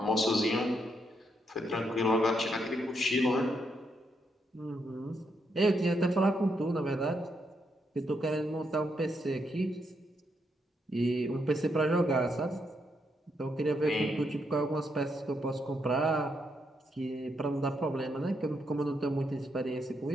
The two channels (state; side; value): normal; both; correlation 0.79